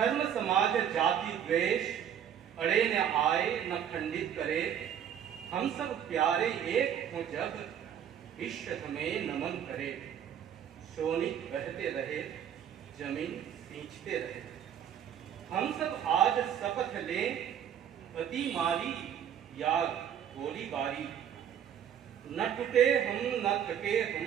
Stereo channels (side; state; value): left; quieter; 9.2 dB